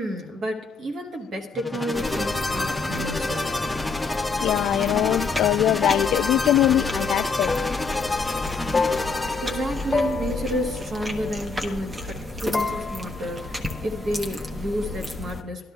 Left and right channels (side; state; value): right; quieter; 4.3 dB